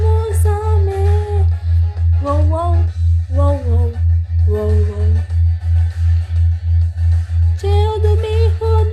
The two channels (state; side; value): identical; both; correlation 1.00